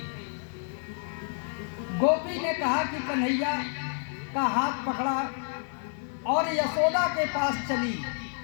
गोपी ने कहा कि कन्हैया का हाथ पकड़ा और यशोदा के पास चली।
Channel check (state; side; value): silent; right; 56 dB below the other